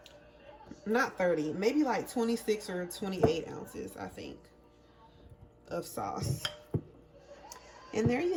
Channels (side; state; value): both; identical; correlation 1.00